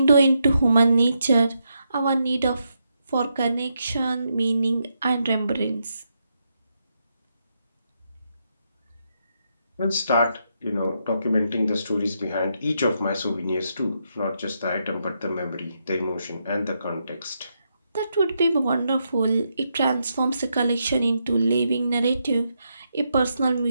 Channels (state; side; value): inverted; both; correlation -0.81